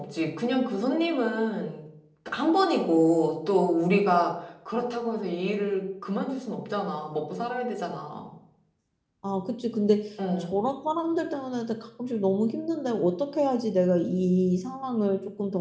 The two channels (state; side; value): identical; both; correlation 1.00